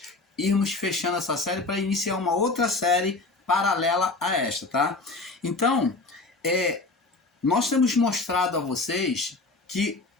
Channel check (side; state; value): right; quieter; 3.5 dB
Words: irmos fechando essa série para iniciar uma outra série paralela a esta, tá? Então, nós temos mostrado a vocês que